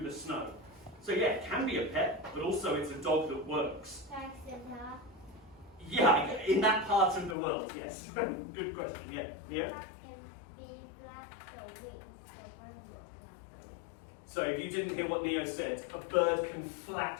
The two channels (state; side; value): drops out; right; at 7.4 s